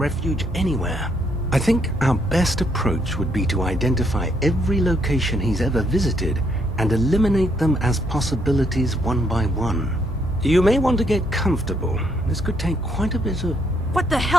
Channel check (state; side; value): normal; both; correlation 0.72